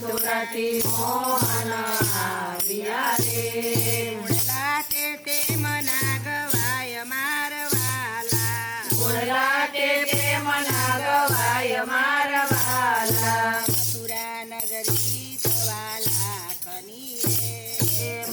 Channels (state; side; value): identical; both; correlation 1.00